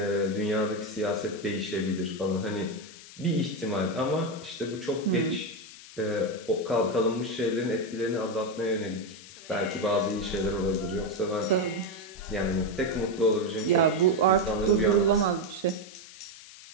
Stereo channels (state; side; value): noise; left; hiss, 18 dB below the sound